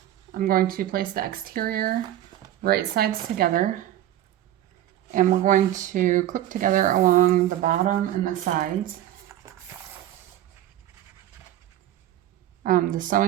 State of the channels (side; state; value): left; quieter; 12.9 dB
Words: I'm going to place the exterior right sides together, and we're going to clip together along the bottom and the sides. The